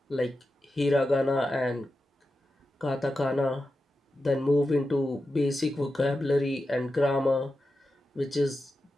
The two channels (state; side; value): normal; both; correlation 0.91